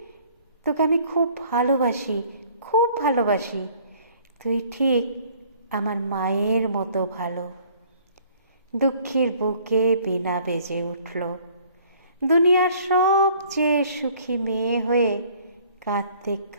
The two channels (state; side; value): inverted; both; correlation -0.56